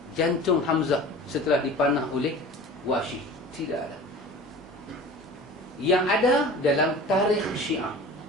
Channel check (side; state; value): both; normal; correlation 0.39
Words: jantung Hamzah setelah dipanah oleh Wahsy. Tidak ada. Yang ada dalam tarikh Syiah.